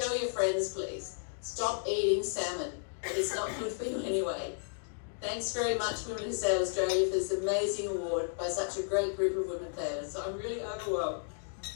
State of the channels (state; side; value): silent; right; digital silence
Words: your friends, please. Stop eating salmon. It's not good for you anyway. Thanks very much, Women Who Sail Australia, for this amazing award by such a great group of women sailors. So I'm really overwhelmed.